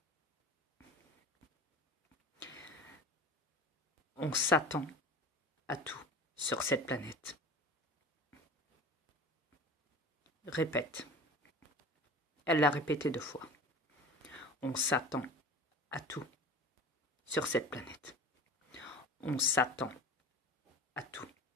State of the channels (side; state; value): both; normal; correlation 0.37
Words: On s'attend à tout sur cette planète. Répète. Elle l'a répété 2 fois. On s'attend à tout sur cette planète. On s'attend à tout